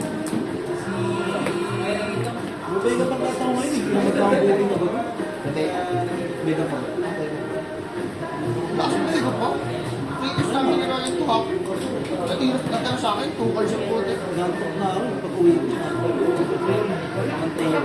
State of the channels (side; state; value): both; identical; correlation 1.00